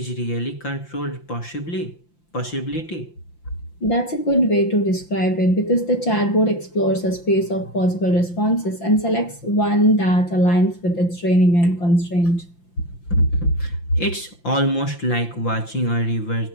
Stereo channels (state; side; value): late; right; 5.8 ms